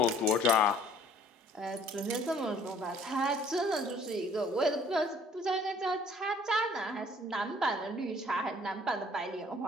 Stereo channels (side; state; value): both; normal; correlation 0.56